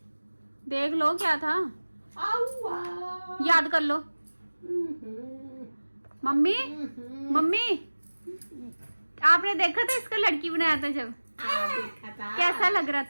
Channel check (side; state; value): both; inverted; correlation -1.00